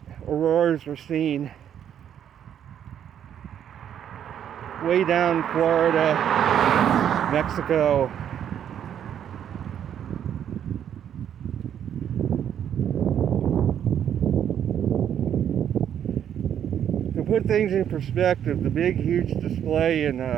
auroras were seen way down Florida, Mexico. To put things in perspective, the big, huge display in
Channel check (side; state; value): left; quieter; 9.5 dB